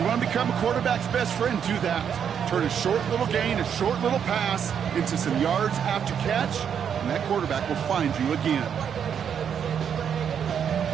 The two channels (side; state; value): left; quieter; 8.0 dB